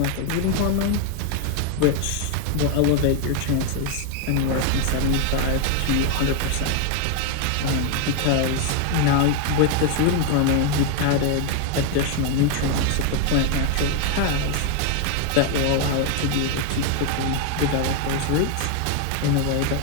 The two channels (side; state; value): both; different; correlation 0.01